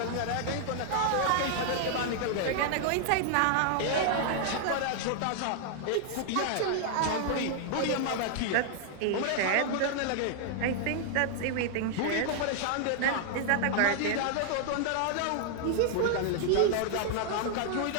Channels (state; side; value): different; both; correlation 0.00